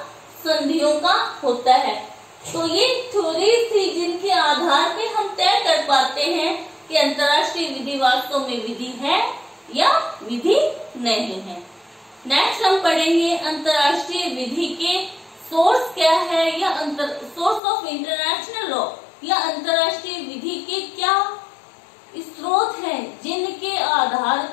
संधियों का होता है। तो ये थ्योरीज थी जिनके आधार पे हम तय कर पाते हैं कि अंतरराष्ट्रीय विधि वास्तव में विधि है या विधि नहीं है। नेक्स्ट हम पढ़ेंगे अंतरराष्ट्रीय विधि के सोर्स क्या है या सोर्स ऑफ इंटरनेशनल लॉ या अंतरराष्ट्रीय विधि के क्या स्रोत हैं जिनके आधार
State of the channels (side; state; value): right; drops out; at 17.6 s